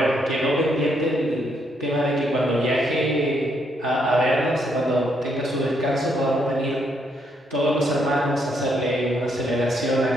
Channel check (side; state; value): both; normal; correlation 0.74